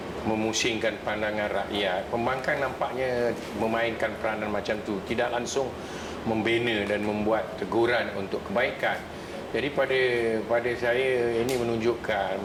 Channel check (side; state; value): both; identical; correlation 1.00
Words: memusingkan pandangan rakyat, pembangkang nampaknya memainkan peranan macam tu, tidak langsung membina dan membuat teguran untuk kebaikan. Jadi pada saya ini menunjukkan